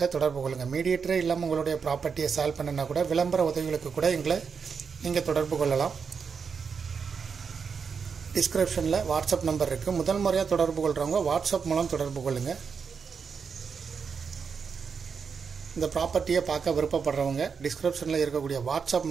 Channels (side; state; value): left; quieter; 6.0 dB